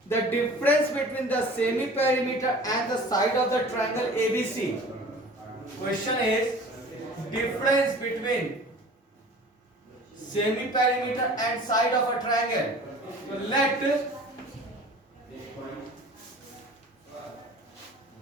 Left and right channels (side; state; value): both; normal; correlation 0.44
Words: The difference between the semi-perimeter and the side of the triangle ABC. Question is difference between semi-perimeter and side of a triangle. So let